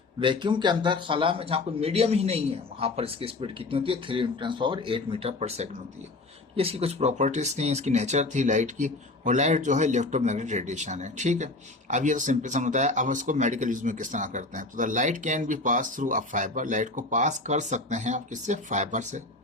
vacuum के अंदर खला में जहाँ कोई मीडियम ही नहीं है, वहाँ पर इसकी स्पीड कितनी होती है, 3×8 मीटर पर सेकंड होती है। ये इसकी कुछ प्रॉपर्टीज थी, इसकी नेचर थी लाइट की। और लाइट जो है इलेक्ट्रोमैग्नेटिक रेडिएशन है। ठीक है, अब ये तो सिंपल समझता है। अब इसको मेडिकल यूज में किस तरह करते हैं, तो the light can be pass through a fibre, light को पास कर सकते हैं आप किससे, फाइबर से।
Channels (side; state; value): right; quieter; 3.1 dB